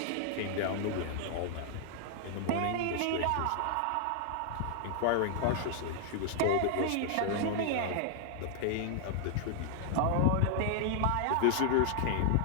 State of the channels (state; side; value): different; both; correlation 0.00